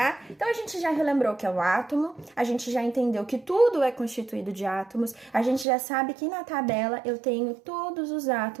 Então, a gente já relembrou o que é o átomo, a gente já entendeu que tudo é constituído de átomos, a gente já sabe que na tabela eu tenho todos os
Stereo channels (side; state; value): left; drops out; at 5.7 s